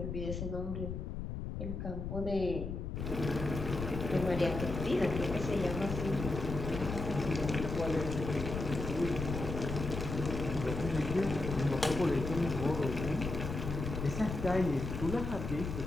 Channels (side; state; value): left; noise; rumble, 5 dB below the sound